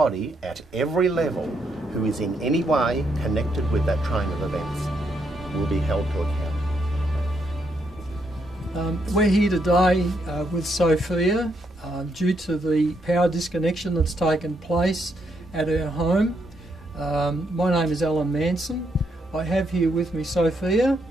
at every level who is in any way connected with that train of events will be held to account. We're here today with Sofia due to the power disconnection that's taken place at her home. My name is Alan Manson. I have here with me Sofia,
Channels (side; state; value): both; normal; correlation 0.77